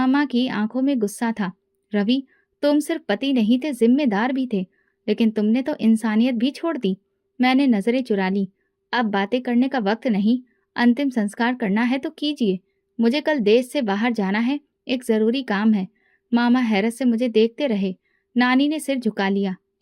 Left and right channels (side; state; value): both; identical; correlation 1.00